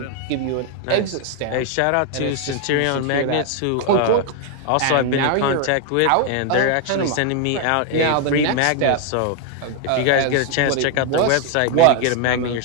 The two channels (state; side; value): different; both; correlation 0.00